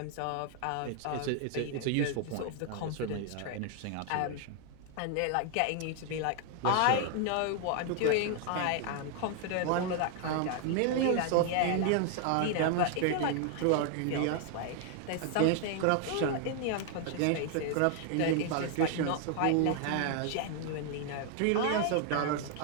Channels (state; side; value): different; both; correlation 0.00